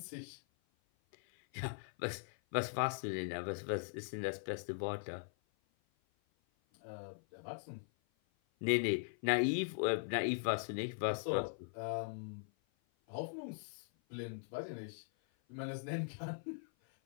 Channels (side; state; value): right; silent; 51 dB below the other